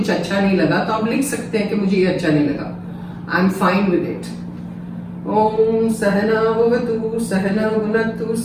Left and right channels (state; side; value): identical; both; correlation 1.00